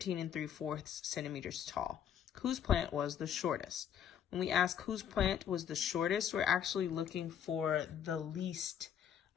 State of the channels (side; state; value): right; quieter; 9.1 dB